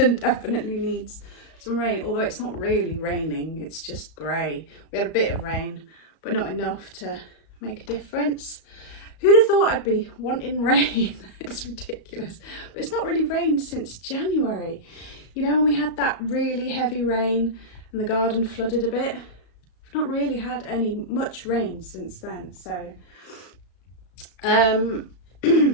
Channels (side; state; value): right; late; 35 ms